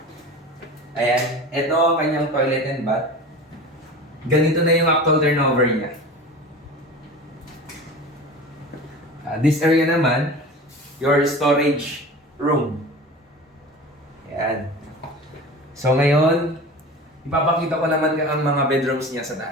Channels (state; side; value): normal; both; correlation 0.35